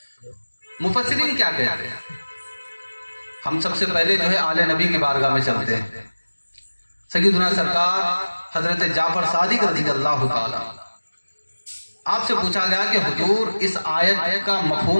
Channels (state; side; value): inverted; both; correlation -1.00